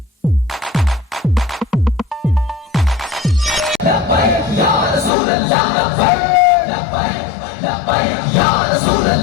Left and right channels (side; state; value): right; drops out; at 5.1 s